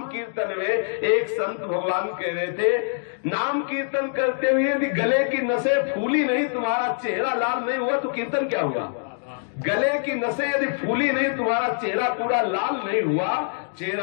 कीर्तन में एक संत भगवान कह रहे थे, नाम कीर्तन करते हुए यदि गले की नसें फूली नहीं, तुम्हारा चेहरा लाल नहीं हुआ तो कीर्तन क्या हुआ। गले की नसें यदि फूली नहीं, तुम्हारा चेहरा पूरा लाल नहीं हुआ,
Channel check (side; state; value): right; silent; digital silence